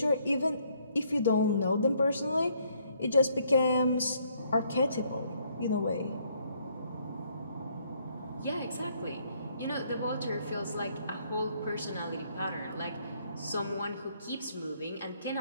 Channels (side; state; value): both; inverted; correlation -0.68